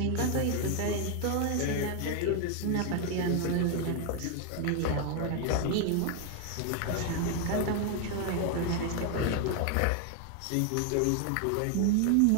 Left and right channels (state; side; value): different; both; correlation 0.00